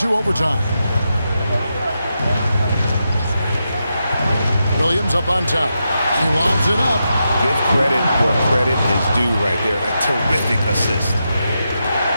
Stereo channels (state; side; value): inverted; both; correlation -0.86